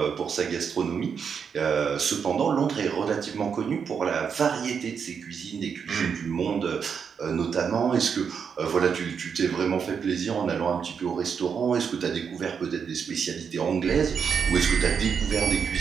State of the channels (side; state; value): left; quieter; 6.7 dB